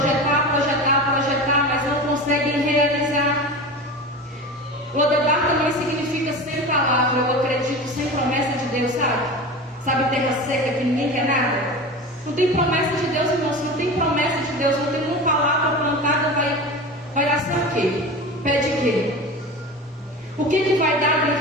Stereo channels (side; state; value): both; normal; correlation 0.30